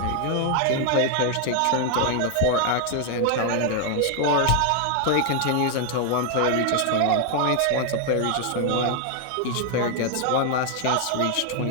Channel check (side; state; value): both; different; correlation 0.00